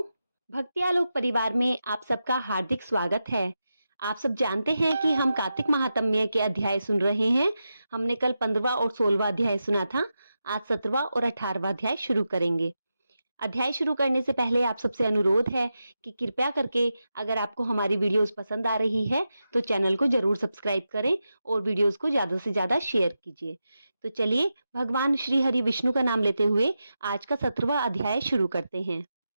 भक्ति आलोक परिवार में आप सबका हार्दिक स्वागत है। आप सब जानते हैं कि हम कार्तिक महात्म्य के अध्याय सुन रहे हैं। हमने कल 15वां और 16वां अध्याय सुना था। आज 17वां और 18वां अध्याय शुरू करेंगे। अध्याय शुरू करने से पहले आप सबसे अनुरोध है कि कृपया करके अगर आपको हमारी वीडियोस पसंद आ रही है तो चैनल को जरूर सब्सक्राइब करें और वीडियोस को ज्यादा से ज्यादा शेयर कीजिए। तो चलिए भगवान श्री हरि विष्णु का नाम लेते हुए आज का 17वां अध्याय शुरू करते हैं।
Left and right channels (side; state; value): both; inverted; correlation -0.89